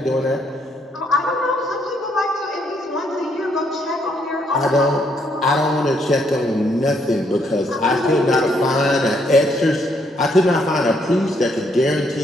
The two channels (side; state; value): both; normal; correlation 0.72